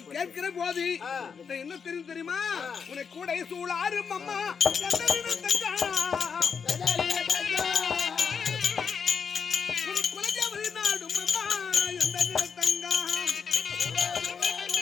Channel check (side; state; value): right; quieter; 6.3 dB